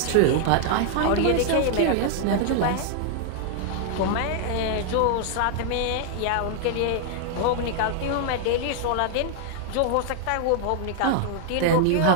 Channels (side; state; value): both; different; correlation 0.00